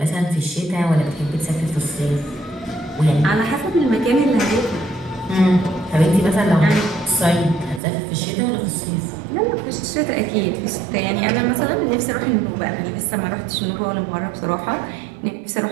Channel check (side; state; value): left; drops out; at 7.8 s